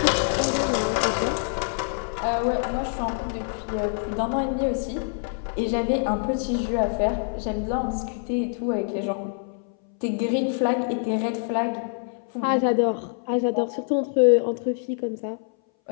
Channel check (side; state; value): right; silent; 60 dB below the other